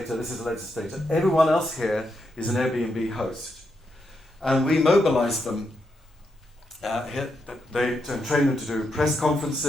This is a legislator. Everyone else here is an Airbnb host. And we mobilized them and trained them to do press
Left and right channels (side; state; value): both; normal; correlation 0.82